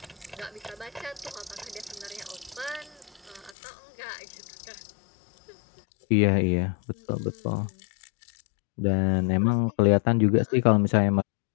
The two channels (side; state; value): right; drops out; at 3.6 s